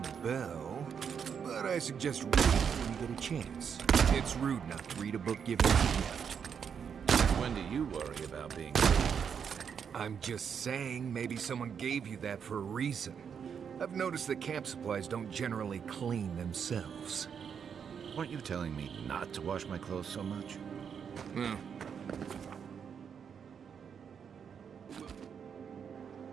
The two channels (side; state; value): left; quieter; 7.2 dB